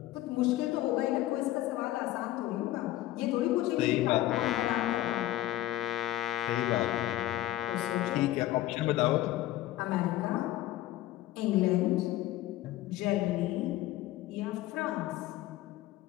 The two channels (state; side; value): quieter; right; 15.0 dB